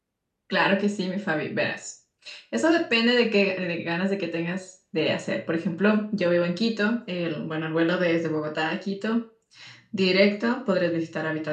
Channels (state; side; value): identical; both; correlation 1.00